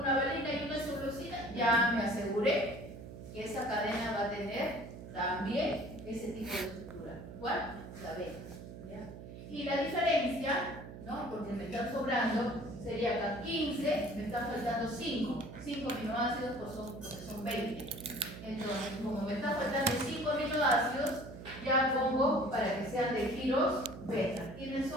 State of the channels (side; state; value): right; noise; hum, 12 dB below the sound